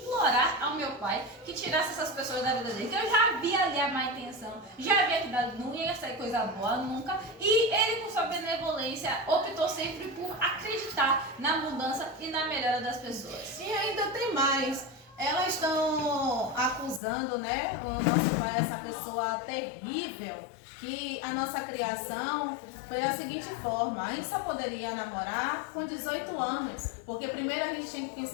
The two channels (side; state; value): right; drops out; at 17.0 s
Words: ao meu pai que tirasse essas pessoas da vida dele, que eu já vi ali a má intenção, já vi que não ia sair coisa boa nunca, e ele com sua benevolência optou sempre por acreditar na mudança e na melhora das pessoas. E ainda tem mais. Elas estão acusando, né, o nosso pai, essa pessoa terrível, que a nossa criação foi da seguinte forma: a gente só poderia namorar com 18 anos, porque primeiro a gente tinha que